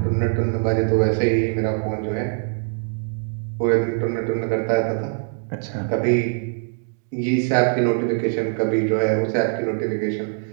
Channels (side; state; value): left; silent; 64 dB below the other